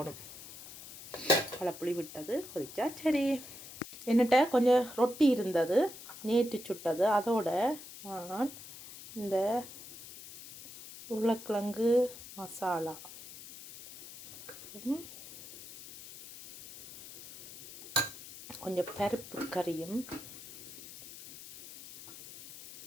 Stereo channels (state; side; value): noise; left; hiss, 14 dB below the sound